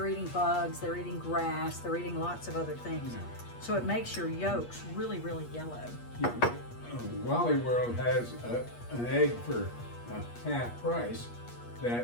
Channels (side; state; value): right; late; 8.4 ms